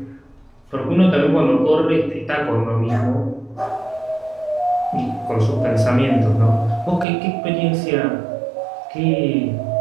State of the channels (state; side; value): drops out; left; at 7.1 s